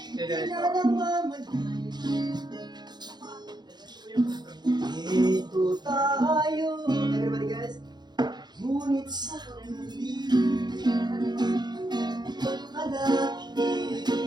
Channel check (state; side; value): late; left; 0.21 ms